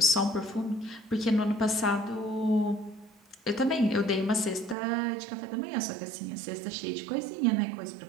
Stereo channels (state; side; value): drops out; left; at 4.8 s